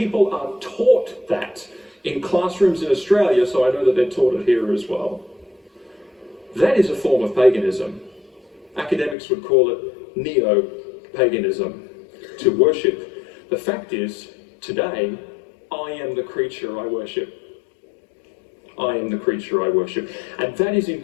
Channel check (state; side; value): drops out; right; at 9.2 s